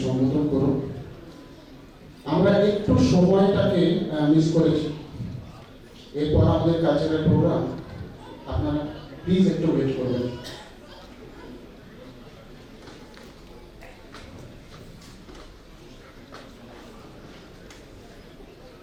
সম্বোধন করুন। আমরা একটু সময়টাকে মিস করেছি, এরপর আমাদের কালচারাল প্রোগ্রাম, আপনারা প্লিজ একটু ওয়েট করবেন।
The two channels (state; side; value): identical; both; correlation 1.00